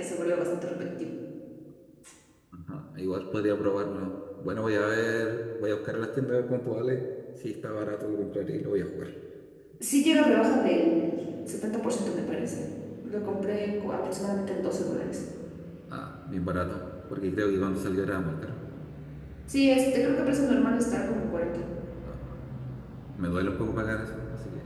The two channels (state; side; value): identical; both; correlation 1.00